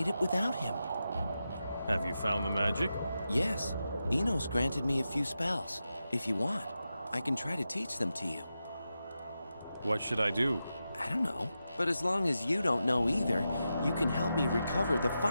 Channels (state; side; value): inverted; both; correlation -0.90